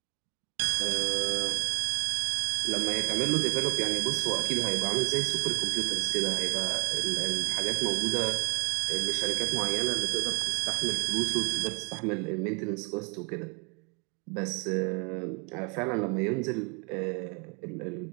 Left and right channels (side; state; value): left; quieter; 33.9 dB